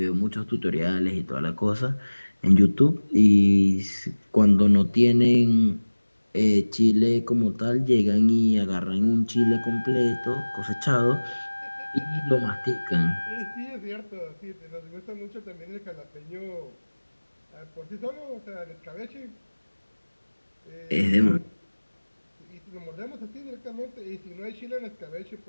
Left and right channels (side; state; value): both; inverted; correlation -1.00